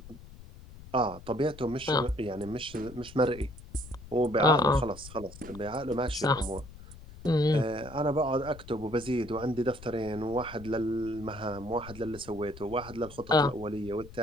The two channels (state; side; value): noise; left; rumble, 17 dB below the sound